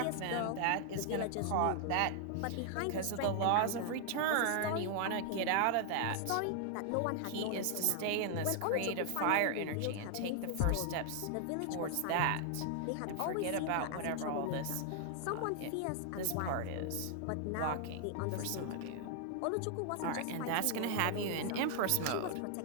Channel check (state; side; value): different; both; correlation 0.00